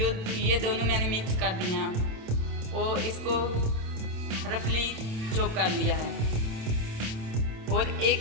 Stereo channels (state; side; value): late; left; 27 ms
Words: ये दोनों मैंने मिक्स कर दिए हैं और इसको रफली चॉप कर लिया है। और